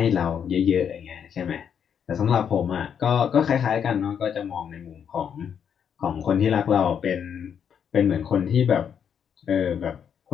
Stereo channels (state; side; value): quieter; right; 7.9 dB